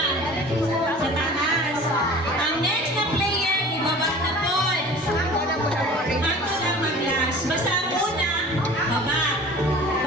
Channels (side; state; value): both; normal; correlation 0.42